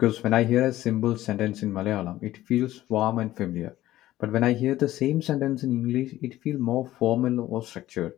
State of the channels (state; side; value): quieter; right; 14.9 dB